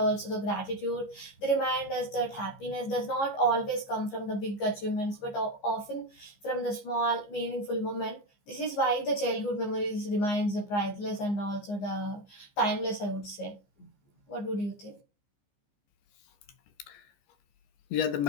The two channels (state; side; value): late; right; 14 ms